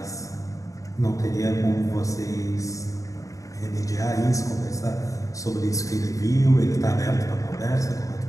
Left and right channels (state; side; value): late; right; 0.16 ms